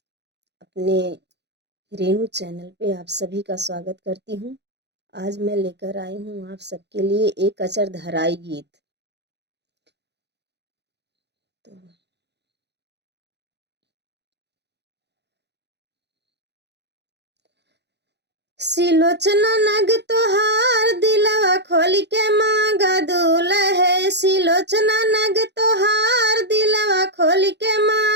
अपने रेणु चैनल पे आप सभी का स्वागत करती हूँ। आज मैं लेकर आई हूँ आप सबके लिए एक अचरधराई गीत। तो सिलोचना नग तोहार दिलवा खोली के मांगा दूल्हे। सिलोचना नग तोहार दिलवा खोली के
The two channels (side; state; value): left; late; 0.50 ms